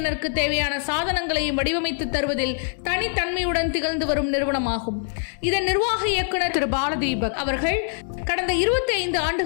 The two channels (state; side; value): silent; right; digital silence